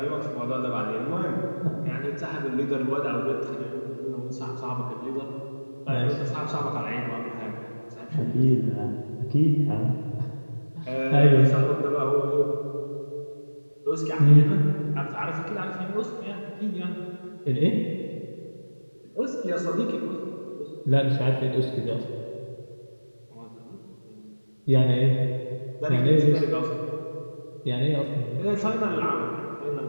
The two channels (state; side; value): inverted; both; correlation -1.00